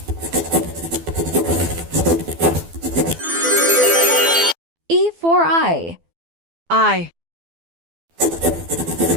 E for eye. Eye.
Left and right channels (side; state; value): left; late; 12 ms